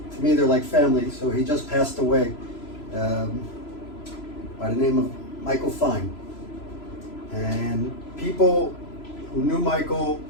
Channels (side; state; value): right; late; 3.0 ms